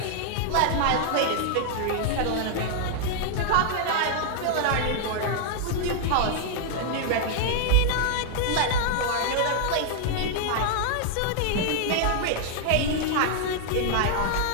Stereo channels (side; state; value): both; different; correlation 0.00